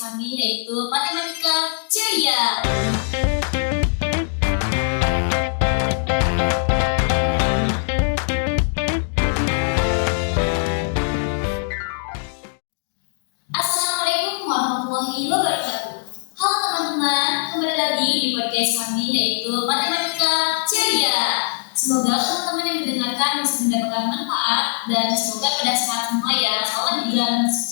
yaitu Matematika Ceria. Assalamualaikum warahmatullahi wabarakatuh. Halo teman-teman, kembali lagi di podcast kami yaitu Matematika Ceria. Semoga teman-teman yang mendengarkan bisa mendapatkan manfaat dan semoga pada saat semua ya, soalnya di bulan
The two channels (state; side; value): silent; right; digital silence